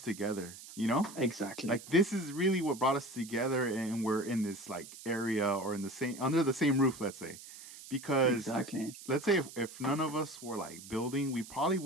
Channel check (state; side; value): noise; right; hiss, 15 dB below the sound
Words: together, Exactly, Like, this is really what brought us together, and we're in this like area, or in the same under the same roof, let's say. Because exactly. let's say if none of us were like building, we probably